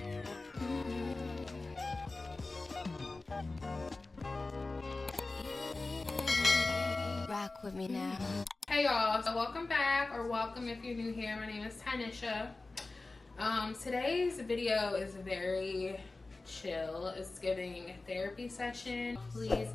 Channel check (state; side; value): quieter; right; 3.3 dB